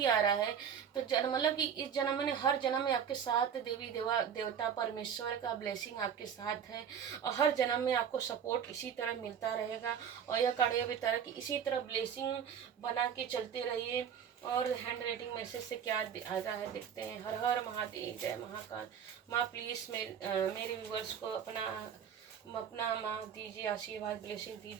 आ रहा है। तो मतलब कि इस जन्म में, हर जन्म में आपके साथ देवी देवता परमेश्वर का ब्लेसिंग आपके साथ है, और हर जन्म में आपको सपोर्ट इसी तरह मिलता रहेगा। और यह कार्य भी तरह की इसी तरह ब्लेसिंग बना के चलते रहिए। और हैंड राइटिंग मैसेज से क्या आता है देखते हैं। हर हर महादेव, जय महाकाल। माँ प्लीज़ मेरे व्यूवर्स को अपना माँ दीजिए, आशीर्वाद, ब्लेसिंग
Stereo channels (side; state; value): left; quieter; 8.0 dB